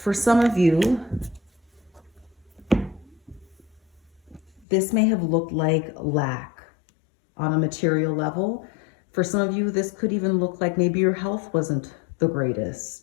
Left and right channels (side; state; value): right; drops out; at 4.7 s